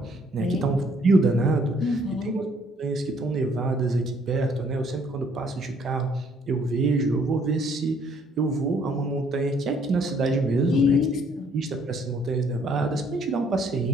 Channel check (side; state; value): both; normal; correlation 0.64